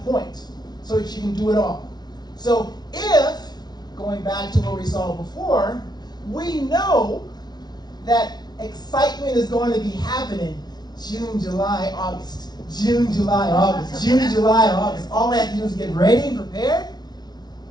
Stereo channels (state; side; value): late; right; 0.19 ms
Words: point so that you can do it all. So if, going back to what we saw before, we know that excitement is going to be happening June, July, August. June, July, August. June, July, August. All I have to do is get ready and prepared.